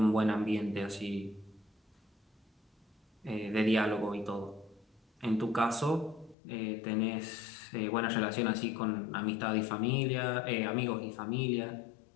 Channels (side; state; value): right; drops out; at 6.4 s